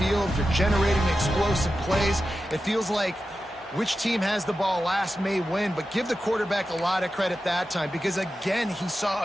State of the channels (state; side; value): normal; both; correlation 0.92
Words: They're generating explosive plays. It feels like which team has the ball last may win, but give the quarterback a lot of credit that time because, again, he saw